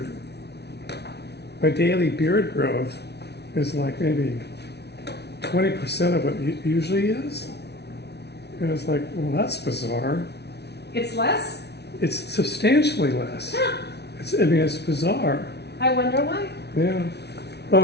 my daily beard growth is like maybe 20% of what it usually is. And it's like, well, that's bizarre. It's less. It's substantially less. I mean, it's bizarre. I wonder why. Yeah.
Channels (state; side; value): late; right; 0.49 ms